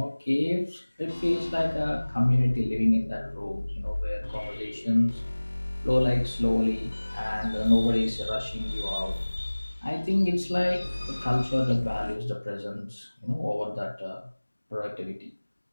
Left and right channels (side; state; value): both; inverted; correlation -1.00